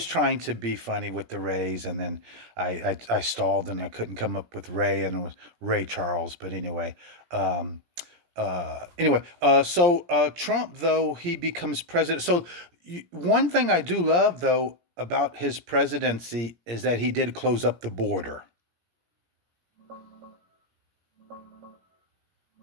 trying to be funny with the Rays, and then I stalled, and I couldn't come up with Ray, and it was Ray Charles. But um, Trump, though, he becomes president. So one thing I do love, though, about his presidency is that he did close up the border.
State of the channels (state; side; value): late; left; 17 ms